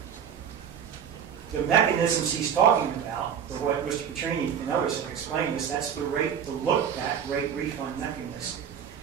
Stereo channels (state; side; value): quieter; left; 8.2 dB